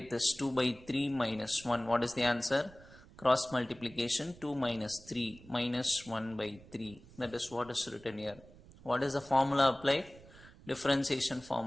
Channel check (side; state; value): right; noise; rumble, 22 dB below the sound